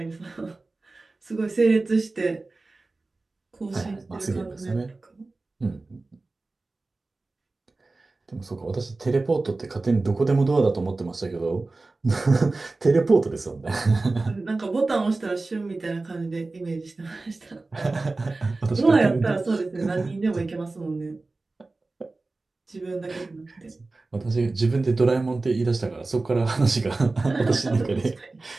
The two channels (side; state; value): left; quieter; 3.4 dB